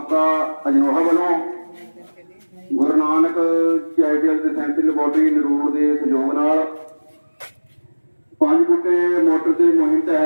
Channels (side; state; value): both; inverted; correlation -1.00